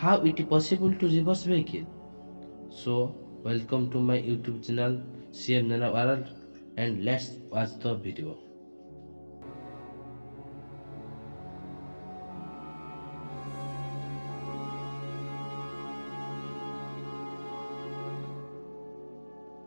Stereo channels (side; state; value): both; inverted; correlation -1.00